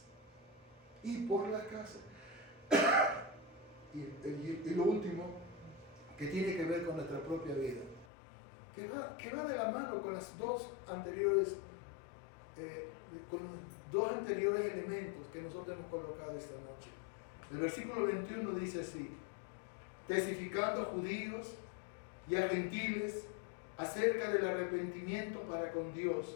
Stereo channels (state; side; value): drops out; right; at 8.1 s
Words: Y por las casas. Y lo último, que tiene que ver con nuestra propia vida, que va de la mano con las dos anteriores, con los dos anteriores elementos que nosotros hemos colocado esta noche. El versículo 21 dice así: testificando a judíos y a gentiles acerca del arrepentimiento para con